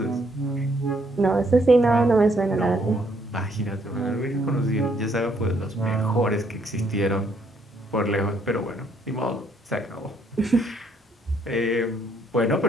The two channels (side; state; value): both; normal; correlation 0.69